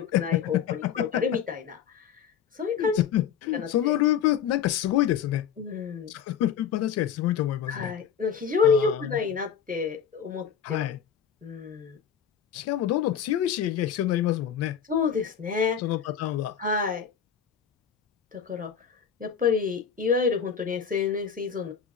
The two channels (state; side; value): quieter; right; 8.0 dB